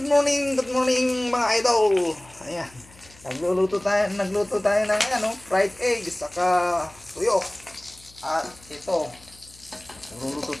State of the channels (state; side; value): noise; left; hum, 24 dB below the sound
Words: morning, good morning mga idol. Ayan. Nagluto tayo ng fried egg saka tuyo. At ito, nagluluto